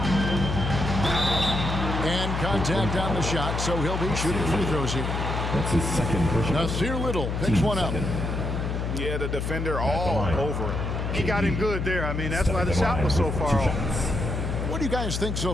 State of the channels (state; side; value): noise; left; hum, 2 dB below the sound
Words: And contact on the shot, so he'll be shooting free throws here. That's his second push. Nasir Little picks one up. Yeah, the defender all over him. He got him good there. I mean, that's why the shot was so far off. What do you guys think so